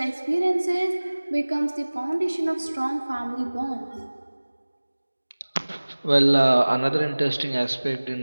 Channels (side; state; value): both; inverted; correlation -1.00